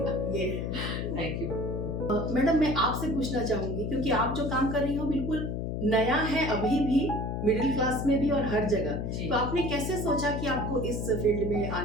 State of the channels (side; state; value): left; noise; hum, 2 dB below the sound